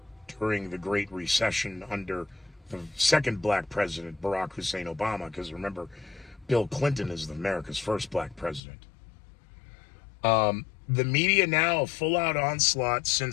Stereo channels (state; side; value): drops out; right; at 8.6 s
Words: during the Great Recession under the second black president, Barack Hussein Obama, because remember, Bill Clinton is America's first black president. The media now, a full-out onslaught